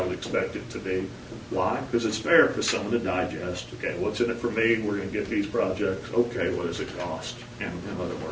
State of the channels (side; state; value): both; identical; correlation 1.00